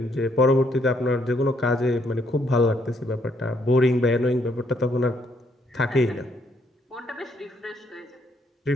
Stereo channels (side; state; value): both; normal; correlation 0.71